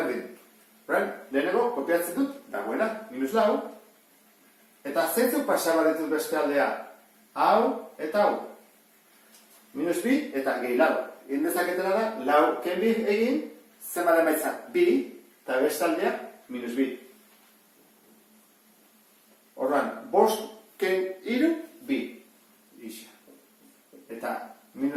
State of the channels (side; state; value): both; identical; correlation 1.00